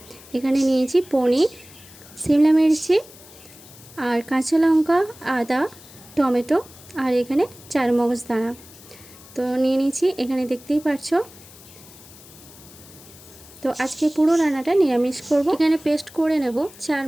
এখানে নিয়েছি পনির, শিমলা মির্চি আর কাঁচা লঙ্কা, আদা, টমেটো আর এখানে চারমগজ দানা। তো নিয়ে নিয়েছি, এখানে দেখতেই পারছো। তো আজকে পুরো রান্নাটা নিরামিষ করব। এখানে পেস্ট করে নেব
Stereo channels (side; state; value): left; noise; hiss, 21 dB below the sound